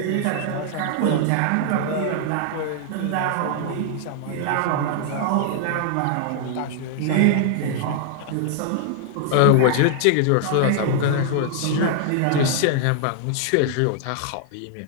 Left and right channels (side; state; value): both; different; correlation 0.00